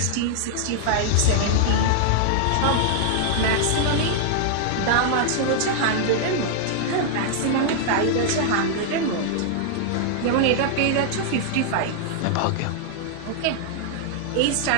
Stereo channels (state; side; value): different; both; correlation -0.01